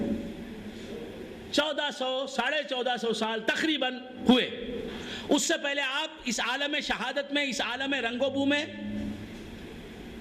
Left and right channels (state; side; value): identical; both; correlation 1.00